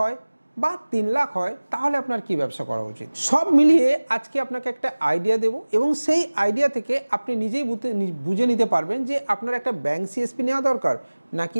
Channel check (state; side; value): inverted; both; correlation -1.00